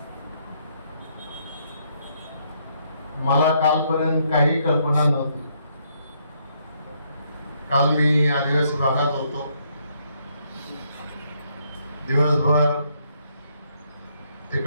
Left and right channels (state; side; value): inverted; both; correlation -0.72